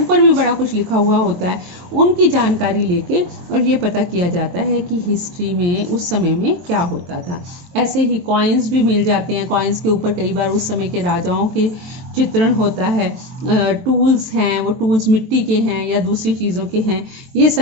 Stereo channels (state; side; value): late; left; 23 ms